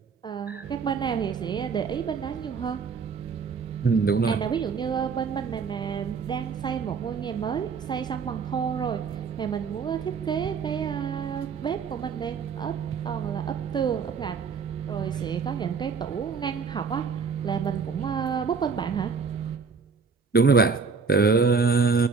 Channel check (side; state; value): left; quieter; 5.5 dB